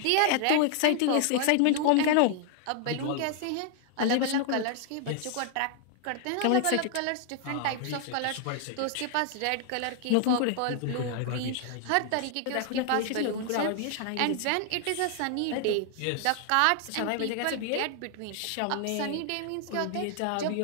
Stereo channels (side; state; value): both; different; correlation 0.00